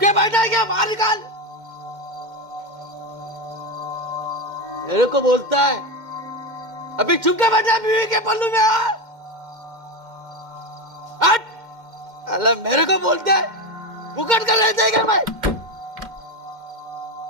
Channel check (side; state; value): left; late; 2.1 ms